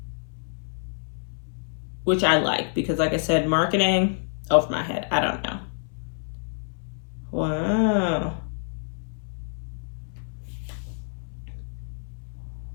which I like because, like I said, marketing over my head. I don't know. Wow.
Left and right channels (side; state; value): right; silent; 60 dB below the other